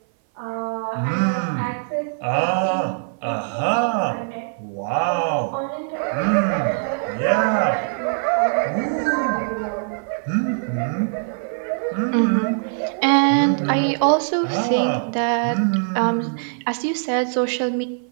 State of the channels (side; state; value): left; silent; 58 dB below the other